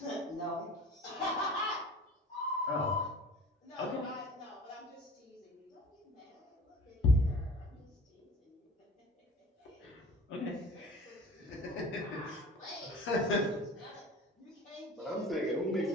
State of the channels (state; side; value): normal; both; correlation 0.43